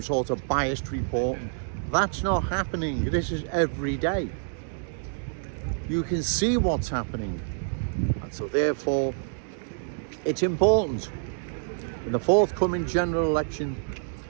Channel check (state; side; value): silent; left; digital silence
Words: sort of biased reporting. That's not happening. This is every day. You can see what's happening, and so therefore it's important in the forthcoming general election